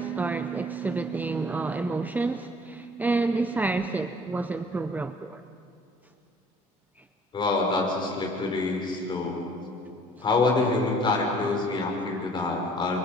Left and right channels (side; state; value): both; normal; correlation 0.54